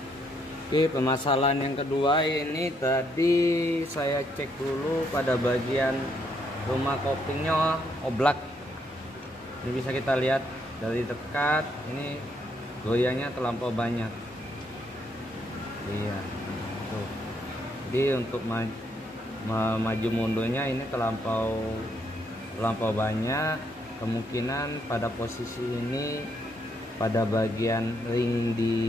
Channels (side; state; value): both; normal; correlation 0.74